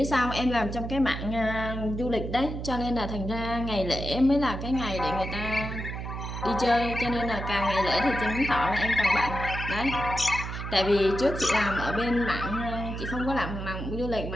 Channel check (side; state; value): right; noise; hum, 6 dB below the sound